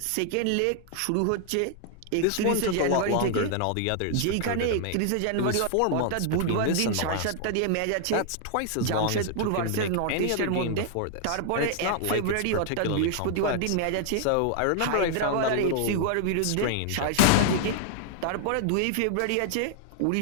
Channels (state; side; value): different; both; correlation 0.00